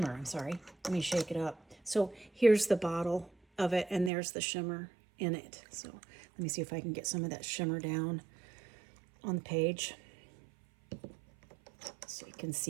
I'm sorry. Let me shake it up. So here's the bottle of it, and there's the shimmer in it. So let me see if I can get some of that shimmer down on the page. So you can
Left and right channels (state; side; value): drops out; left; at 4.1 s